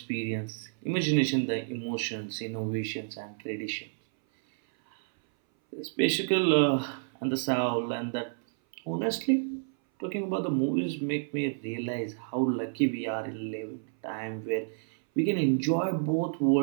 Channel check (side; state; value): left; silent; 58 dB below the other